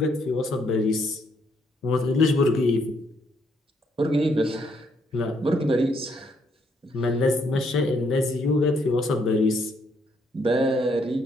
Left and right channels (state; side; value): normal; both; correlation 0.72